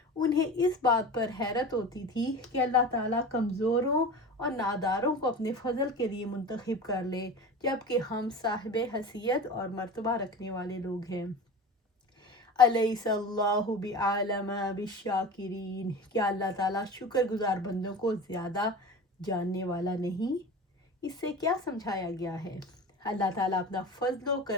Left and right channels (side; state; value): both; normal; correlation 0.33